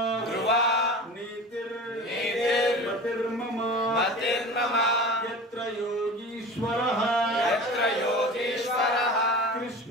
ధ్రువా నీతిర్ నీతిర్ మతిర్మమ మతిర్మమ. యత్ర యోగీశ్వరః, యత్ర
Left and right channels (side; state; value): both; normal; correlation 0.35